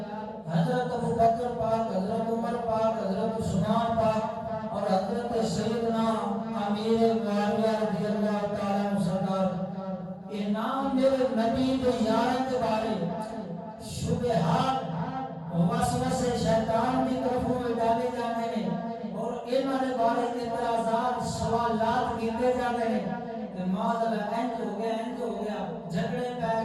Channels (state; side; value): identical; both; correlation 1.00